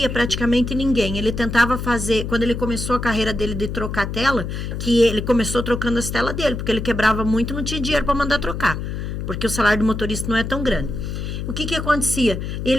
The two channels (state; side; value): noise; left; hum, 5 dB below the sound